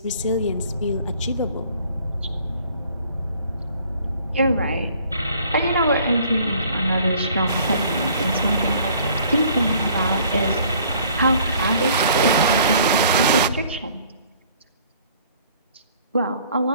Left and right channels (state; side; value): inverted; both; correlation -0.56